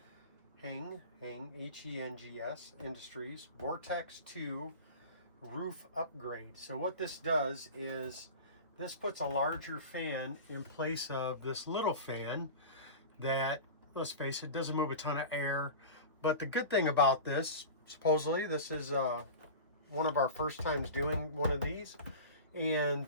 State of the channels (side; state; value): both; inverted; correlation -0.32